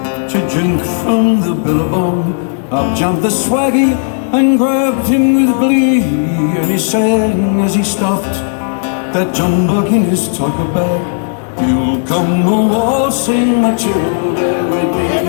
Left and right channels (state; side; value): silent; right; digital silence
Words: to drink from the billabong. Up jumped the swaggy and grabbed him with glee, and he sang as he stuffed that jumbuck in his topper bag. You'll come a-waltzing Matilda with me.